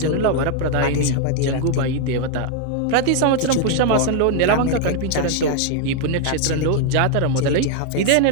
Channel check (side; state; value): both; different; correlation 0.01